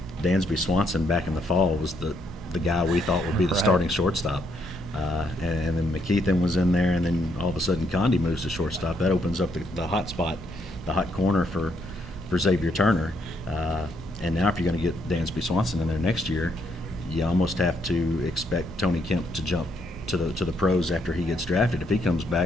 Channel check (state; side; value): normal; both; correlation 0.74